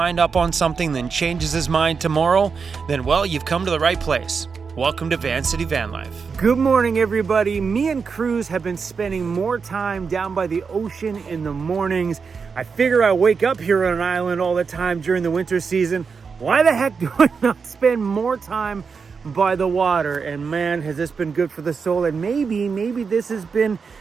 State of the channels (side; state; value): left; quieter; 5.5 dB